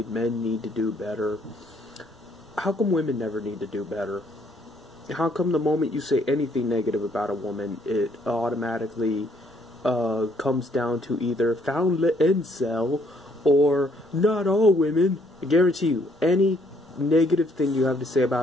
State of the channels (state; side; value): noise; right; rumble, 29 dB below the sound